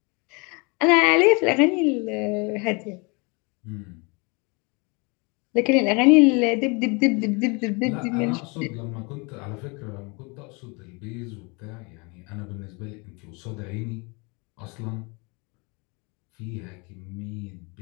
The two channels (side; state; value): right; quieter; 29.8 dB